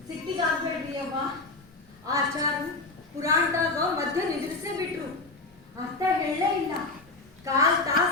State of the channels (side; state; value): right; quieter; 3.4 dB